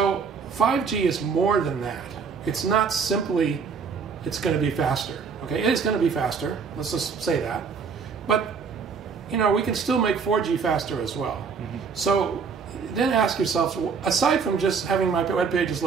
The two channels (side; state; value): left; quieter; 5.7 dB